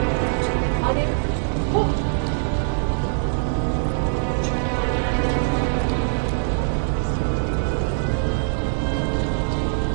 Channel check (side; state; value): left; silent; 60 dB below the other